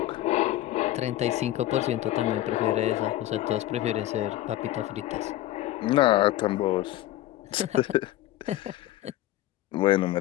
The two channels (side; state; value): right; quieter; 14.8 dB